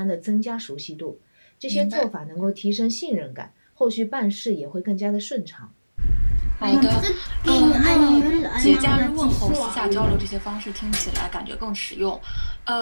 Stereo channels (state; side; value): inverted; both; correlation -1.00